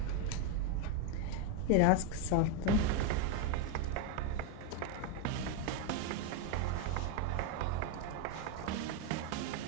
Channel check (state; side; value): different; both; correlation 0.02